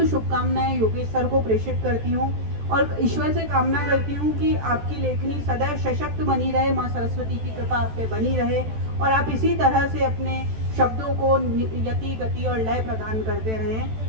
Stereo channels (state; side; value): late; left; 14 ms